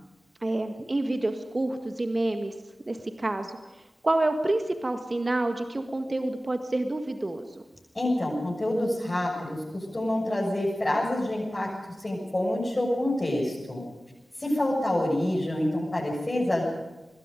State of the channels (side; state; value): both; normal; correlation 0.96